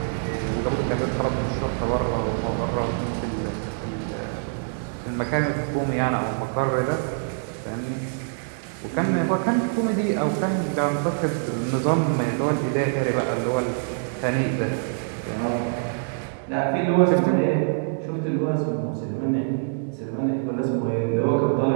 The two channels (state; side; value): silent; left; digital silence